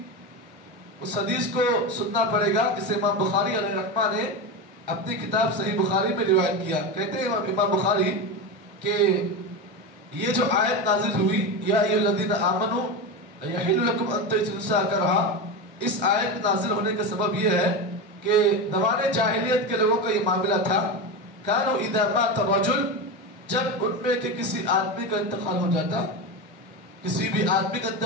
اس حدیث کو سننا پڑے گا جسے امام بخاری علیہ رحمہ نے اپنی کتاب صحیح بخاری میں روایت کیا. کہتے ہیں امام بخاری کہ یہ جو آیت نازل ہوئی یا ایھا الذین آمنوا یحل لکم ان ترثوا النساء کرہا، اس آیت نازل ہونے کا سبب یہ ہے کہ زمانے جاہلیت کے لوگوں کا یہ معاملہ تھا، کانوا اذا مات الرجل، جب ان میں کہ کسی آدمی کا انتقال ہو جاتا، کسی بھی آدمی کا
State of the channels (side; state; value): both; normal; correlation 0.19